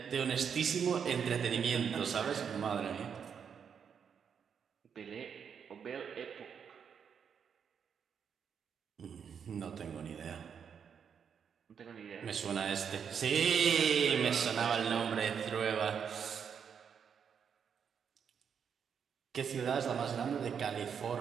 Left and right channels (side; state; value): left; quieter; 7.2 dB